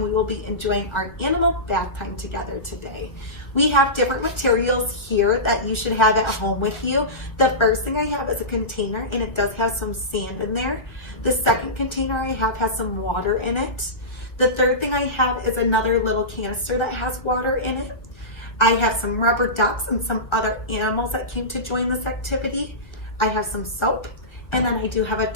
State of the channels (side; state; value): right; late; 1.5 ms